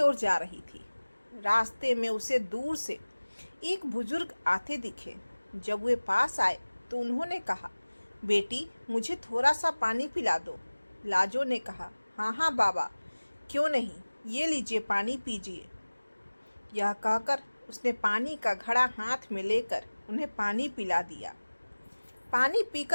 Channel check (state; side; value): inverted; both; correlation -1.00